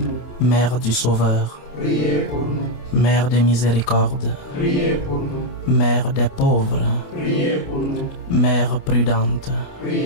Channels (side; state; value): right; late; 28 ms